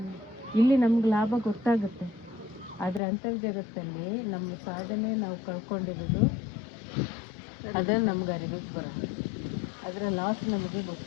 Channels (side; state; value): right; drops out; at 3.0 s